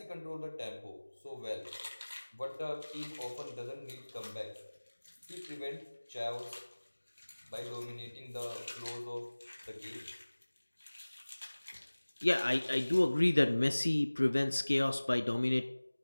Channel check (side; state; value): both; inverted; correlation -1.00